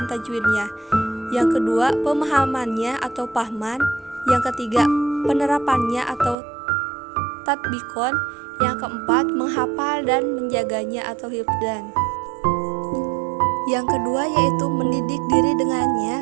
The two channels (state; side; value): drops out; left; at 6.4 s